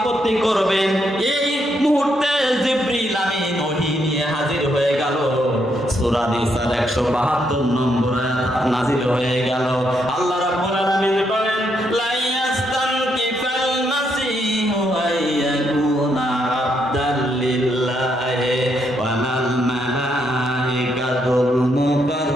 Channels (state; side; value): normal; both; correlation 0.77